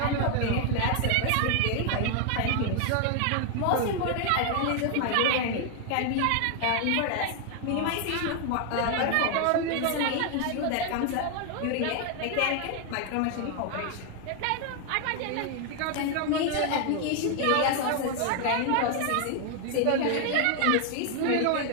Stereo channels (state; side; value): different; both; correlation 0.00